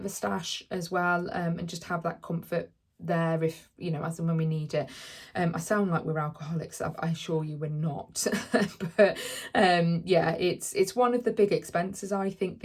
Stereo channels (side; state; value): both; identical; correlation 1.00